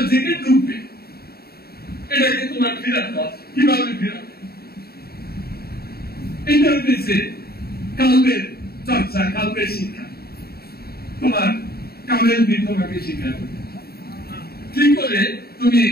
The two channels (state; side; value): late; right; 0.45 ms